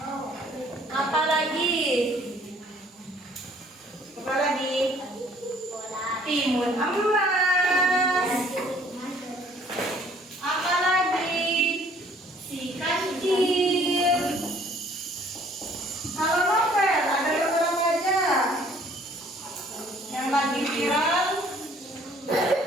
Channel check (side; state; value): both; normal; correlation 0.58